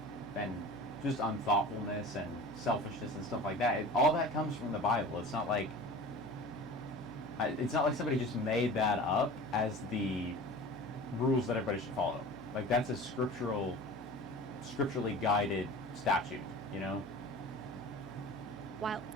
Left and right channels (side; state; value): both; normal; correlation 0.38